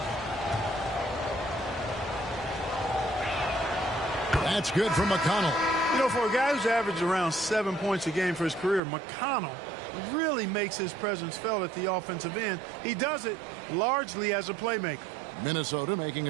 That's good from McConnell. You know, for a guy who's averaged around 7 points a game for his career, McConnell really makes his presence felt at the offensive end. He does it largely as a playmaker. Minnesota making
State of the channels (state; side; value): drops out; left; at 8.8 s